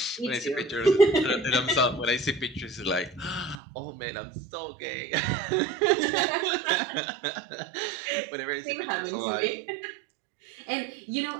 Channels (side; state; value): left; drops out; at 3.6 s